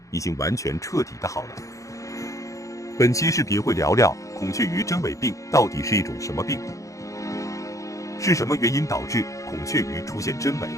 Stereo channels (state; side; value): late; right; 0.16 ms